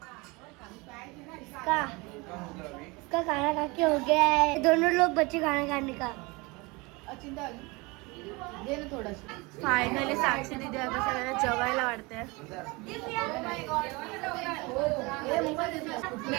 का उसका खाना खा के हो गया है. दोनों लोग बच्चे खाना खाने का. अचिंता दे ना थोडस. फायनली साक्षी दीदी आता सगळ्यांना जेवायला वाटते.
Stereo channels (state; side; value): quieter; left; 25.6 dB